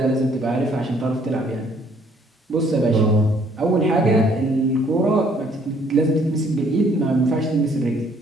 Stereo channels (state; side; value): normal; both; correlation 0.63